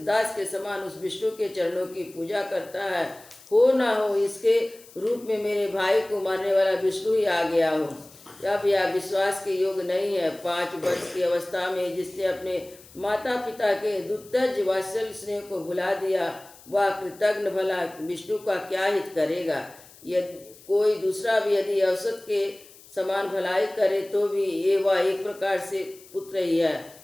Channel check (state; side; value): noise; left; hiss, 23 dB below the sound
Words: के समान उस विष्णु के चरणों की पूजा करता है। हो ना हो इसके रूप में मेरे भाई को मारने वाला विष्णु ही आ गया हो। अब यह विश्वास के योग नहीं है। 5 वर्ष की अवस्था में जिसने अपने माता पिता के दुत्तज वात्सल्य स्नेह को भुला दिया, वह कृतज्ञ भला विष्णु का क्या हित करेगा? यदि कोई दूसरा भी यदि औसत के समान भलाई करे तो भी ये वह एक प्रकार से पुत्र ही है,